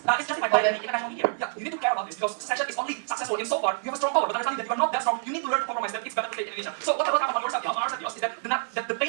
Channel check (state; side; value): silent; left; 60 dB below the other